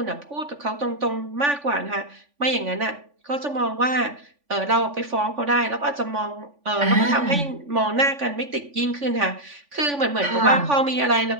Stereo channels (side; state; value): left; late; 3.5 ms